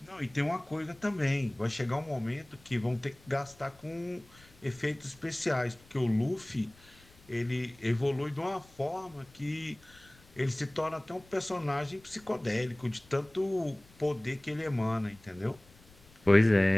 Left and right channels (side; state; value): left; noise; rumble, 26 dB below the sound